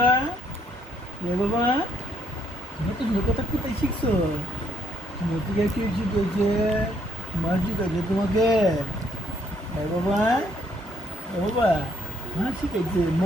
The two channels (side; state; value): both; normal; correlation 0.68